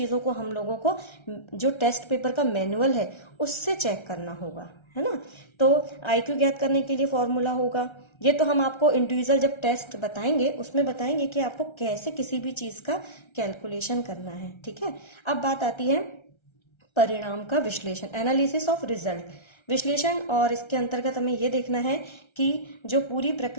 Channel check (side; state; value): right; late; 1.3 ms